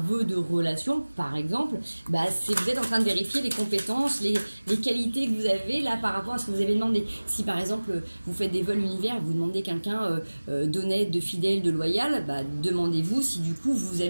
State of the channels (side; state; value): both; inverted; correlation -1.00